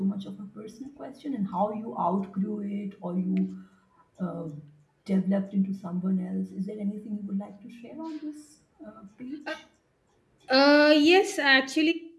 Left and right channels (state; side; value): identical; both; correlation 1.00